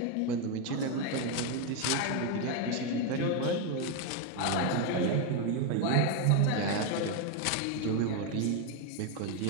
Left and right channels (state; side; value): different; both; correlation 0.02